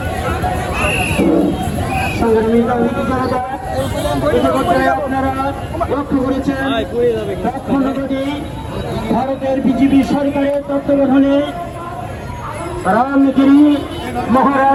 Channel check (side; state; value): both; identical; correlation 1.00